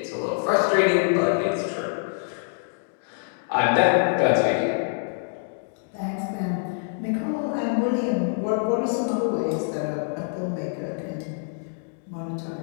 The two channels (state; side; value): silent; right; digital silence